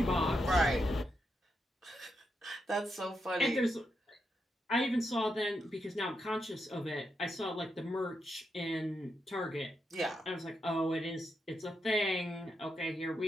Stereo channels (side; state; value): both; normal; correlation 0.83